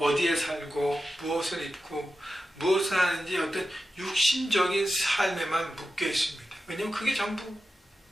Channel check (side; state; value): both; normal; correlation 0.92